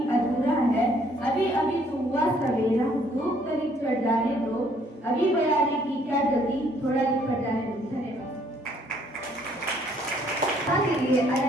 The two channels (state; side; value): normal; both; correlation 0.64